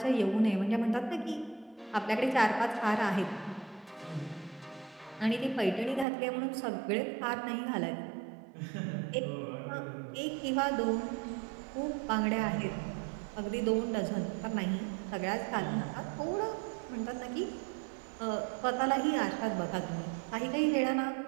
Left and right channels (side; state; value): left; drops out; at 6.1 s